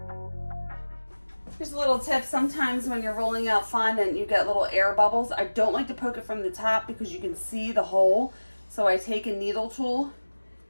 Here's a little tip. Sometimes when you're rolling out fondant, you get little air bubbles. I don't like to poke it from the top because you can see the hole. So I take a needle tool,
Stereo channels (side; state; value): both; inverted; correlation -1.00